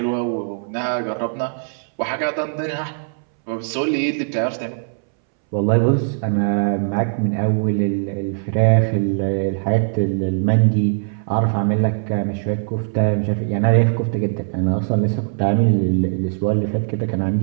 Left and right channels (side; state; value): left; silent; 65 dB below the other